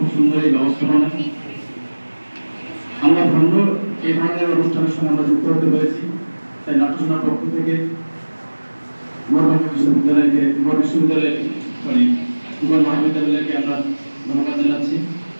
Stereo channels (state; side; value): inverted; both; correlation -1.00